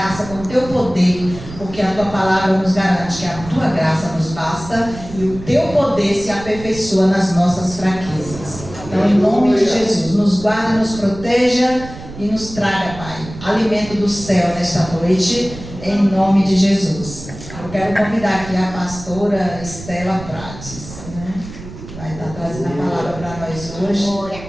com o teu poder, porque a tua palavra nos garante que a tua graça nos basta e o teu poder se aperfeiçoa nas nossas fraquezas. Então, em nome de Jesus, nos guarde, nos proteja e nos traga, Pai, alimento do céu nesta noite, em nome de Jesus. Eu quero convidar aqui a pastora Estela Prates, né? Vai estar trazendo a palavra para nós hoje,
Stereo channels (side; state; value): right; noise; rumble, 14 dB below the sound